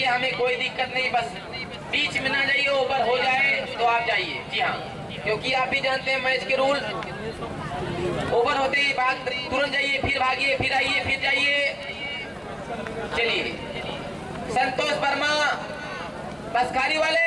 हमें कोई दिक्कत नहीं, बस बीच में ना जाइए, ओवर हो जाए तो आप जाइए। जी हाँ, क्योंकि आप भी जानते हैं मैच के रूल। ओवर होते ही भाग तुरंत जाइए, फिर भागिए, फिर आइए, फिर जाइए। चलिए संतोष वर्मा बसखारी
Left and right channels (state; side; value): identical; both; correlation 1.00